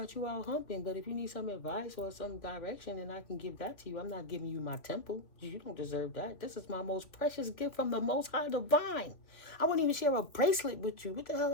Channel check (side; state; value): right; late; 2.9 ms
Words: you out humping, but if you need some advice or some direction, then I can give that to you. I'm not giving you my temple. You don't deserve that. This is my most precious gift from the Most High Divine. I wouldn't even share a bracelet with you. What the hell